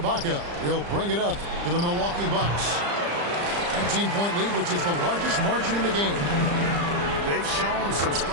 will bring it up for the Milwaukee Bucks. 19-point lead, which is the largest margin in the game. They've shown some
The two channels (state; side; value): late; left; 35 ms